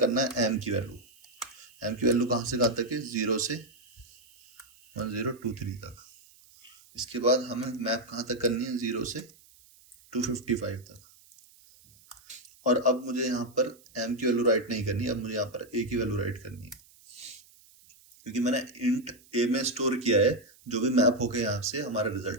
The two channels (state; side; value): noise; right; hiss, 27 dB below the sound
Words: है, m की वैल्यू। m की वैल्यू कहाँ से कहाँ तक है, 0 से 1023 तक। इसके बाद हमें मैप कहाँ तक करनी है, 0 से 255 तक। और अब मुझे यहाँ पर m की वैल्यू राइट नहीं करनी, अब मुझे यहाँ पर a की वैल्यू राइट करनी है, क्योंकि मैंने इंट a में स्टोर किया है जो भी मैप होके यहाँ से हमारा